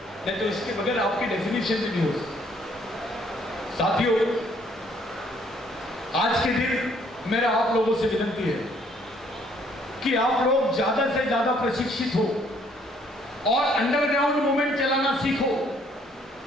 नहीं तो इसके बगैर आपकी डेफिनेशन भी नहीं हो सकती। साथियों, आज के दिन मेरा आप लोगों से विनती है कि आप लोग ज्यादा से ज्यादा प्रशिक्षित हो और अंडरग्राउंड मूवमेंट चलाना सीखो।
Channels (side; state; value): both; normal; correlation 0.64